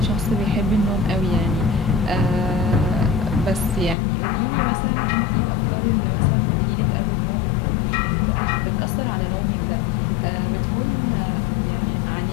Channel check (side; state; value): right; drops out; at 4.0 s